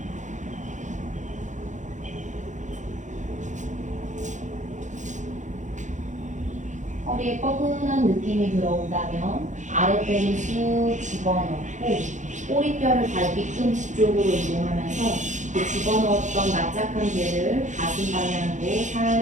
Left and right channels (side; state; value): left; late; 0.35 ms